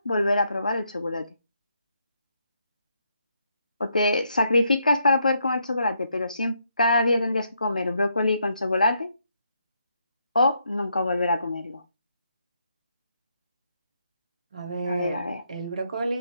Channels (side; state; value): both; inverted; correlation -0.76